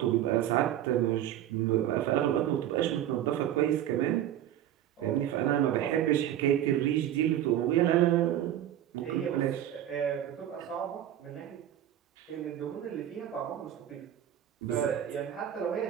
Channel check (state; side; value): quieter; left; 11.6 dB